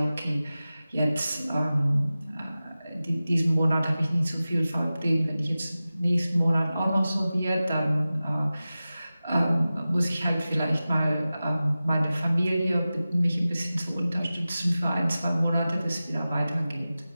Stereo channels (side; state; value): both; inverted; correlation -0.95